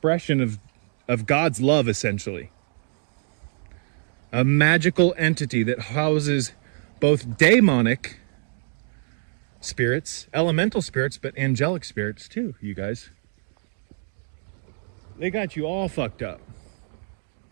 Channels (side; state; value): left; silent; digital silence